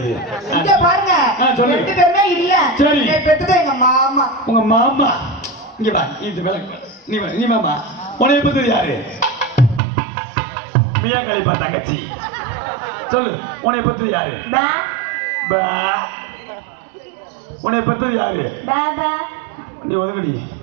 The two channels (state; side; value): drops out; left; at 9.8 s